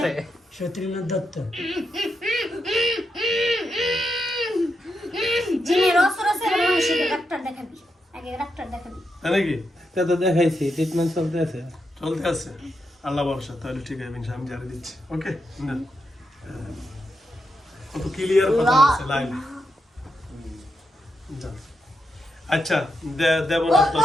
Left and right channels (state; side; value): normal; both; correlation 0.84